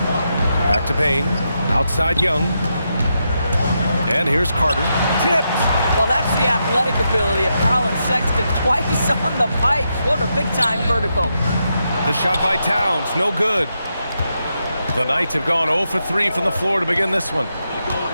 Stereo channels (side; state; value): both; inverted; correlation -0.84